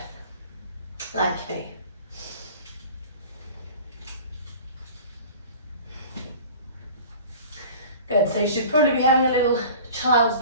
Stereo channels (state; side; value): inverted; both; correlation -0.42